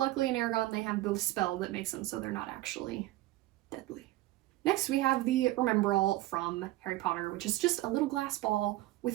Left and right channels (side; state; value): left; quieter; 17.2 dB